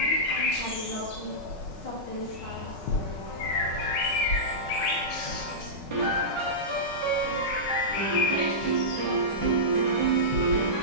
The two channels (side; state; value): right; late; 5.4 ms